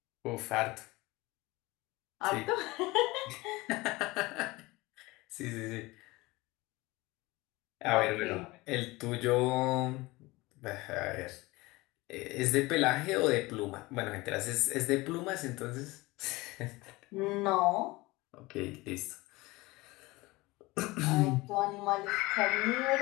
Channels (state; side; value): quieter; right; 21.6 dB